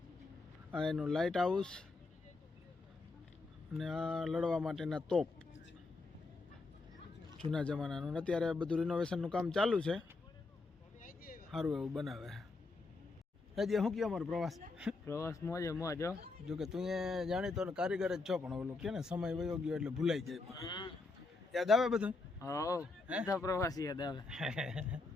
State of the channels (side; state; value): right; quieter; 3.6 dB